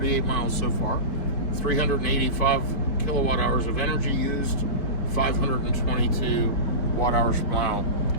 miles so far, 385 kilowatt hours of energy used, 522 watt hours per mile.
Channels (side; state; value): right; late; 5.1 ms